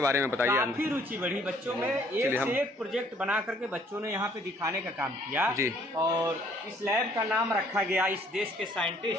बारे में बताइए। काफी रुचि बढ़ी बच्चों में, एक से एक प्रोजेक्ट बना करके बच्चों ने यहाँ पे दिखाने का काम किया जी। और इस लैब का नाम रखा गया इस देश के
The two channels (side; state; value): both; normal; correlation 0.61